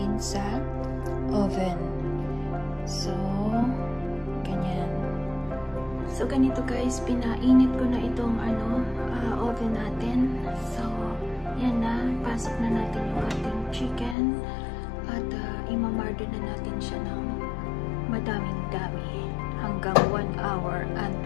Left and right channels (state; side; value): drops out; right; at 14.2 s